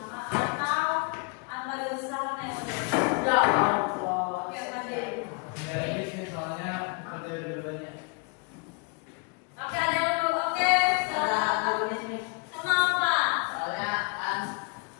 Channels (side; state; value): right; quieter; 33.9 dB